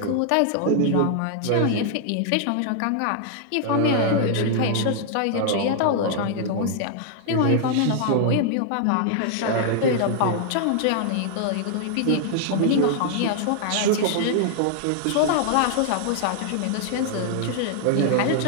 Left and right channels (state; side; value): different; both; correlation 0.00